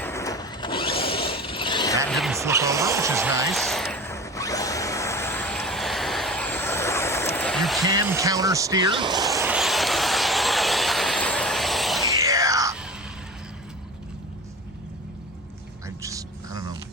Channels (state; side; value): normal; both; correlation 0.34